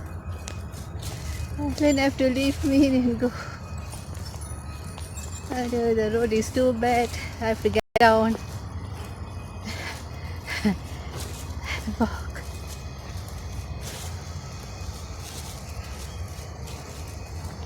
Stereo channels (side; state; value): both; identical; correlation 1.00